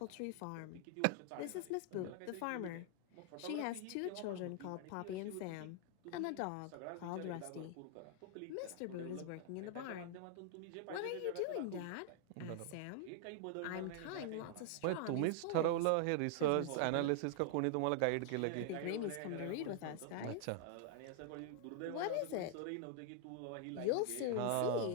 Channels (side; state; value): both; different; correlation -0.01